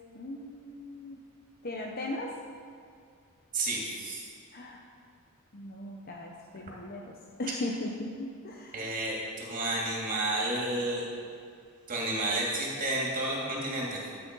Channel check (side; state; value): both; normal; correlation 0.10